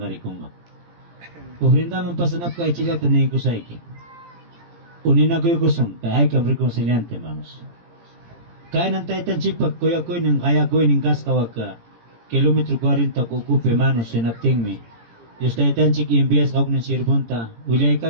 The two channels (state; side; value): late; left; 17 ms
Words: arikunga. Ofrendaman pasanap kay chilak tanay ko sa iki. Unina ko yung kusong, kaya ay kam reconciliante, hermanos. Kaya nang taitan chikpak, kuya ko yung kaya ko yung kaskawag ka. Kilometro 40 kukupe, hermanos, sinapting mi. Diyos taitan chik imbias kawag ng sirbunta. Ulay